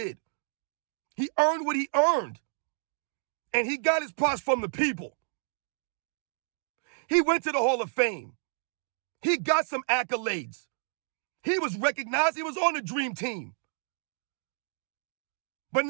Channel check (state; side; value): silent; left; digital silence